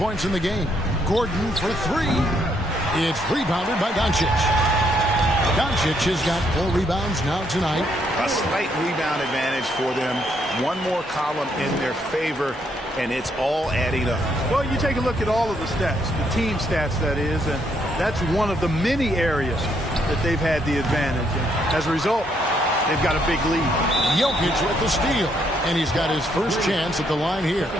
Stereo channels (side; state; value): both; normal; correlation 0.73